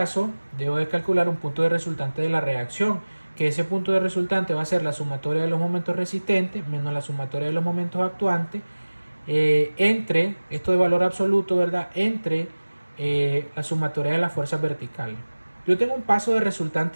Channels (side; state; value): both; inverted; correlation -1.00